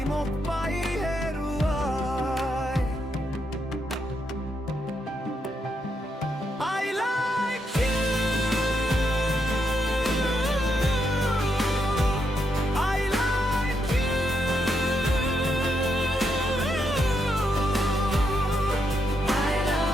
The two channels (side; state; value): both; normal; correlation 0.80